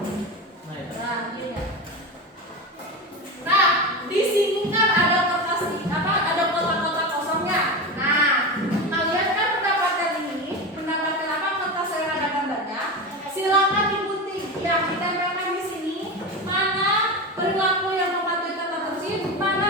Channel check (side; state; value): both; normal; correlation 0.22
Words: Nah, iya. Nah, di sini kan ada kertas ada kotak-kotak kosongnya. Nah, kalian kan mendapatkan kertas yang ada gambarnya. Silakan digunting. Ya, kita tempelkan di sini mana perilaku yang mematuhi tata tertib,